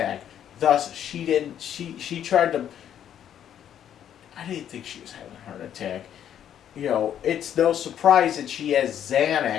Thus, she tried to, I didn't think she was having a heart attack. You know, it's no surprise that she has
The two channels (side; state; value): right; quieter; 9.9 dB